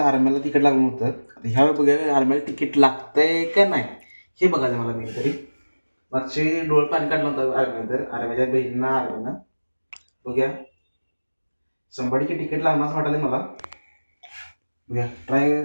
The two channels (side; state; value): both; inverted; correlation -1.00